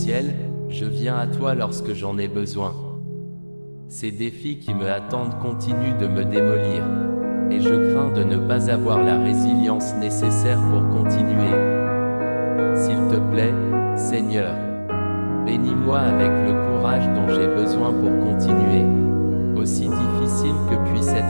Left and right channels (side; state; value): both; inverted; correlation -1.00